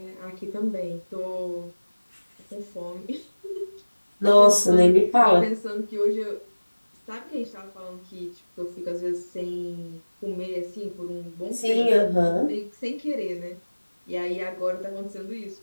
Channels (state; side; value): inverted; both; correlation -1.00